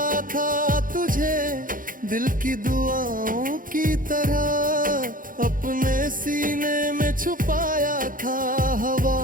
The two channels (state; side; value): late; left; 0.40 ms